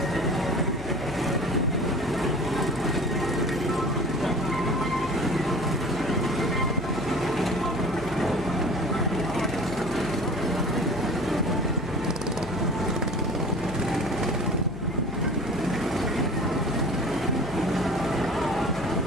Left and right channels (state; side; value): noise; left; hum, 13 dB below the sound